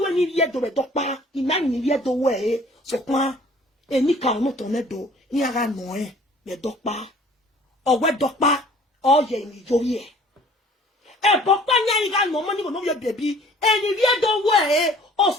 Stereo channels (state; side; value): normal; both; correlation 0.52